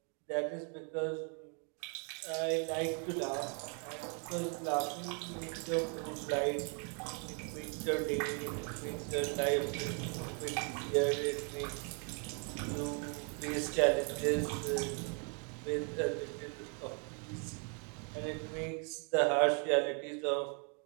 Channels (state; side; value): quieter; left; 39.0 dB